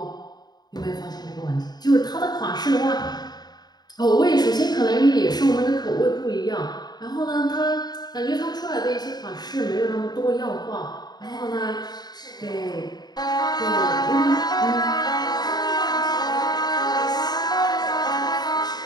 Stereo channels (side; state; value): right; late; 0.20 ms